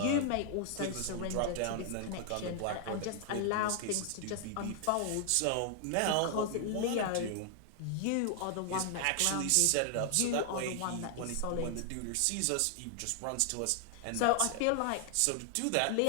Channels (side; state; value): both; different; correlation 0.00